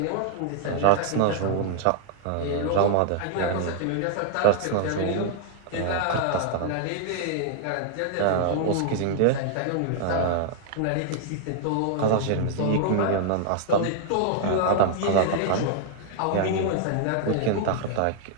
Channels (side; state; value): both; different; correlation 0.00